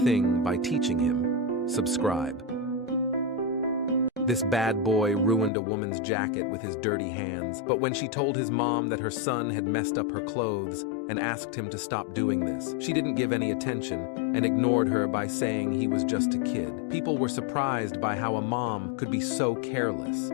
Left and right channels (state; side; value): drops out; right; at 5.5 s